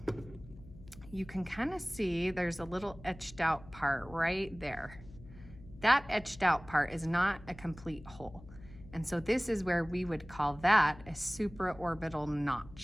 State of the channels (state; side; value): noise; left; hum, 19 dB below the sound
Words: you can kind of see there's a little etched out part right there. That etched out part is not a complete hole. And so this is where we would call that a supraorbital